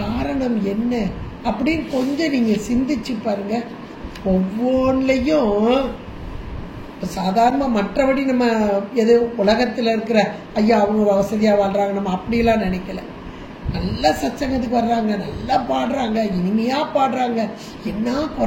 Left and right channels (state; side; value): identical; both; correlation 1.00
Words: என்ன அப்படின்னு கொஞ்சம் நீங்க சிந்திச்சு பாருங்க. ஒவ்வொன்றையும் சாதாரண மற்றபடி நம்ம எது உலகத்தில் இருக்கிற ஐயா அவங்க வசதியாக வாழ்றாங்க நம்ம அப்படிலாம் நினைக்கல. நல்லா சத்சங்கத்துக்கு வர்றாங்க, நல்லா பாடுறாங்க, இனிமையா பாடுறாங்க, என்ன